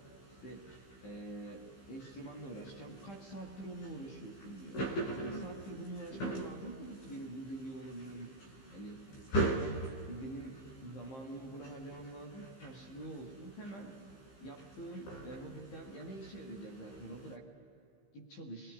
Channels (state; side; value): late; right; 15 ms